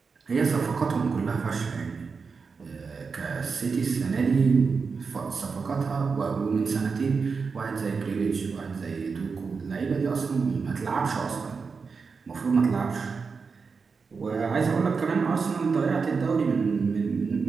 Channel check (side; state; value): left; quieter; 5.1 dB